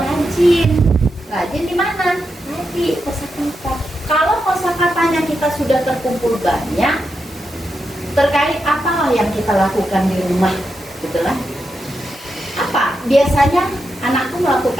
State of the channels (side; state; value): both; normal; correlation 0.86